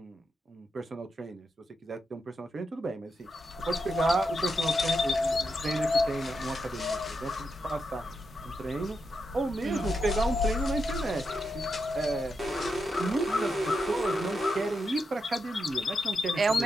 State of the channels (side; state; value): both; normal; correlation 0.85